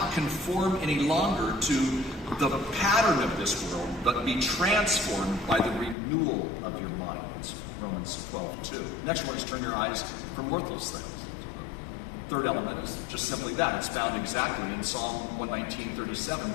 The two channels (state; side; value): drops out; right; at 6.0 s